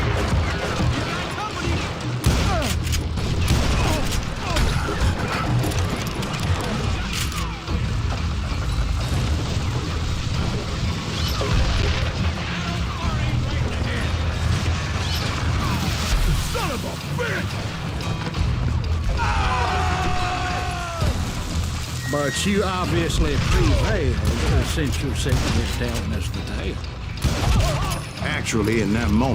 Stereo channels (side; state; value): both; identical; correlation 1.00